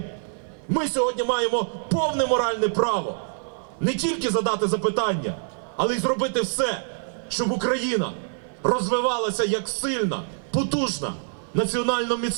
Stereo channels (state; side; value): silent; left; 62 dB below the other